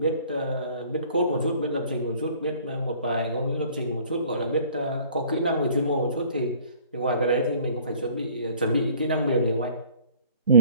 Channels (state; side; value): inverted; both; correlation -0.53